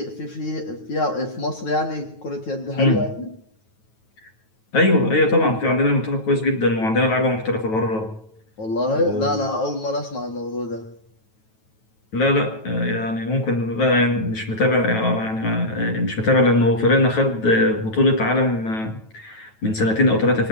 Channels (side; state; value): right; late; 9.2 ms